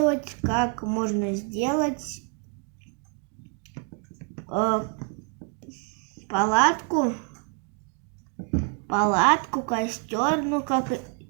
как можно сделать палатку, костер, ну как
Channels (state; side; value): quieter; left; 35.5 dB